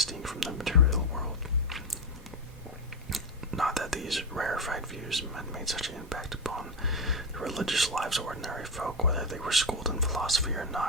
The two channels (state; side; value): normal; both; correlation 0.12